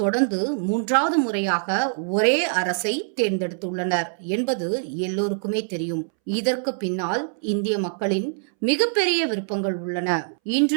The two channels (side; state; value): left; silent; 63 dB below the other